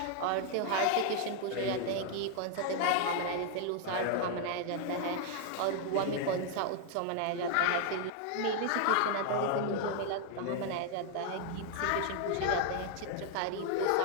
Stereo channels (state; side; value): different; both; correlation 0.00